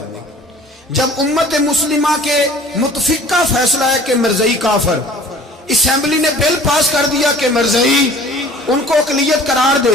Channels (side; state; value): both; normal; correlation 0.48